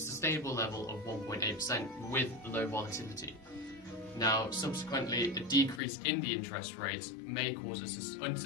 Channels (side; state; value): right; drops out; at 5.8 s